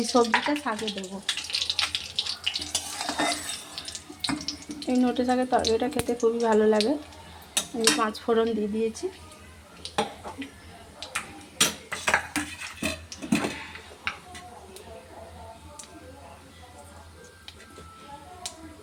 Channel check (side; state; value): both; identical; correlation 1.00